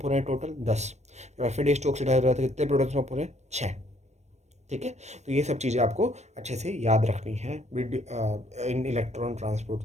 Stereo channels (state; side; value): late; left; 0.32 ms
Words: हो रहे हैं, टोटल 10। जब FADH2 ऑक्सीडाइज हो रहा है तो कितने प्रोटॉन्स पंप हो रहे हैं, 6। ठीक है, तो ये सब चीज़ें आपको अच्छे से याद रखनी है इन इलेक्ट्रॉन ट्रांसपोर्ट